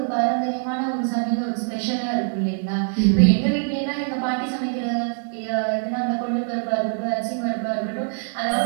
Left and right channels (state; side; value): silent; left; digital silence